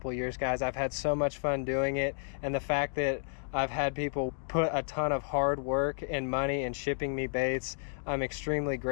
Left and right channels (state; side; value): silent; right; digital silence